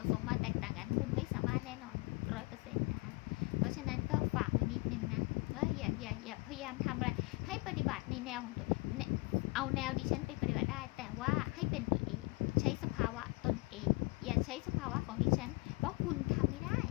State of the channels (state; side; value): quieter; right; 25.8 dB